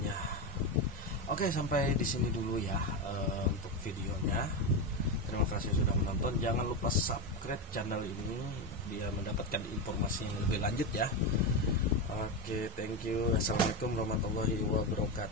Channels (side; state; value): both; normal; correlation 0.14